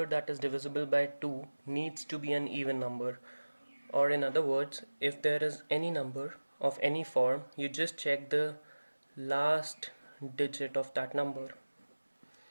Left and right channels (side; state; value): both; inverted; correlation -1.00